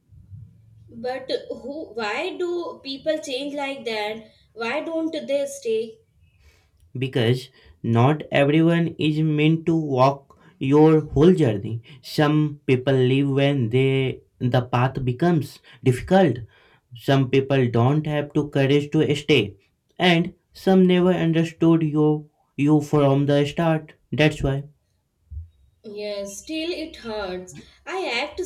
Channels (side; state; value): both; identical; correlation 1.00